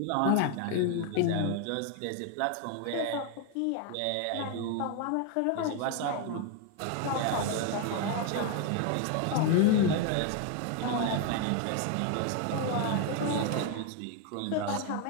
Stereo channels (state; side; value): different; both; correlation 0.01